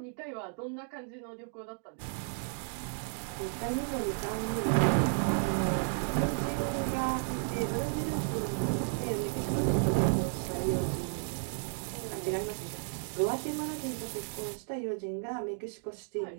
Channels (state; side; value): silent; left; 56 dB below the other